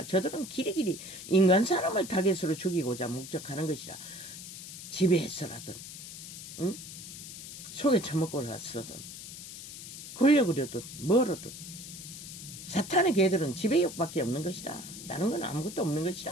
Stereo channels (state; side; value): noise; left; hiss, 12 dB below the sound